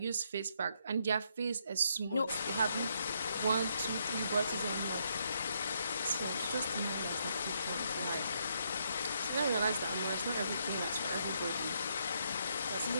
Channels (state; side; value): inverted; both; correlation -0.75